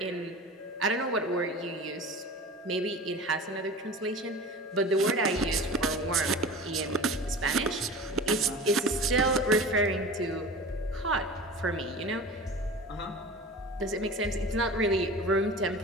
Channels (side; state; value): both; normal; correlation 0.36